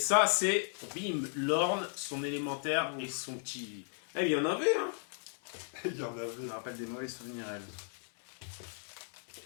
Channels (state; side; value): silent; right; 54 dB below the other